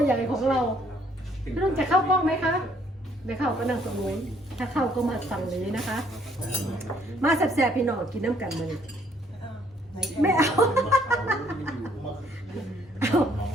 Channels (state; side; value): normal; both; correlation 0.65